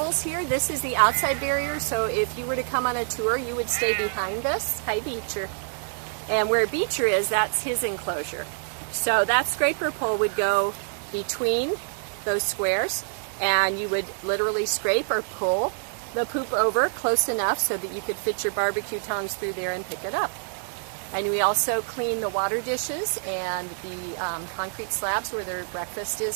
here. This is the outside barrier, so if you were to come on a tour, you would stay behind this. Hi, Beecher. And where Beecher is, that's his enclosure. So that scraper pole would go between those squares, and you would literally scrape or pull the poop over close enough so that you could fit your barbecue tongs through there and pick it up. And we also clean the water dishes and the concrete slabs where their breakfast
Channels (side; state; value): left; silent; digital silence